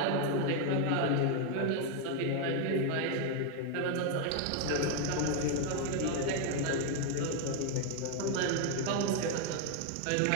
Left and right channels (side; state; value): both; different; correlation 0.01